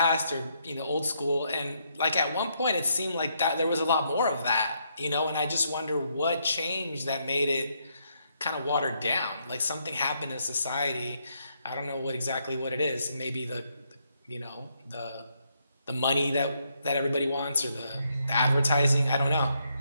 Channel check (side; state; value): both; inverted; correlation -0.76